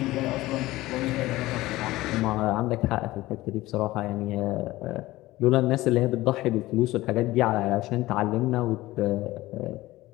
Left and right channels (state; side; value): quieter; right; 17.9 dB